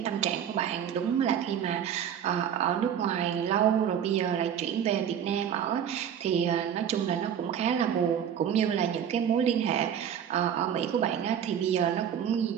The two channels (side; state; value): left; quieter; 8.9 dB